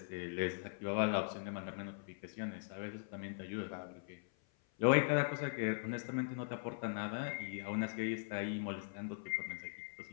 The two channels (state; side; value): silent; right; 51 dB below the other